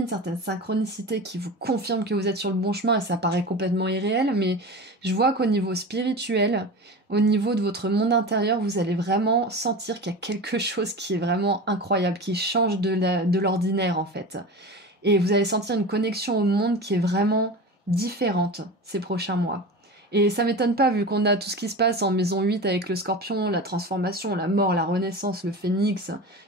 certaines synchronicités qui vous confirment que vous êtes sur le bon chemin et ça paraît complètement irréel, mais je vois qu'au niveau spirituel, au niveau de votre monde intérieur, vous allez vraiment sentir qu'il y a quelque chose qui est vraiment incroyable, qui change de l'ordinaire en fait. Et vous allez sentir une connexion au monde qui est vraiment différente ces prochains mois. Et ça m'étonne pas vu qu'on a tout ce qui se passe en maison 8 avec le scorpion, la transformation, la mort, la renaissance, le phénix,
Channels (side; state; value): both; normal; correlation 0.29